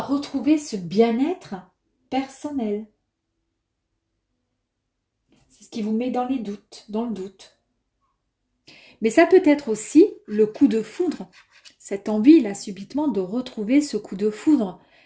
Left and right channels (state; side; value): identical; both; correlation 1.00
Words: retrouver ce bien-être personnel. C'est ce qui vous met dans les doutes, dans le doute. Mais ça peut être aussi le coup de foudre, cette envie là subitement de retrouver ce coup de foudre,